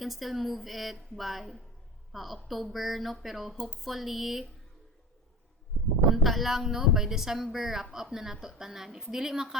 still move it by October, no? Pero hopefully, unta lang, no? By December, wrap up na nato tanan. If dili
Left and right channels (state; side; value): normal; both; correlation 0.33